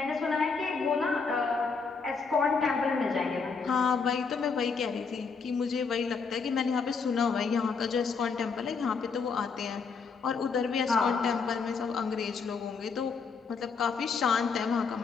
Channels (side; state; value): right; quieter; 5.2 dB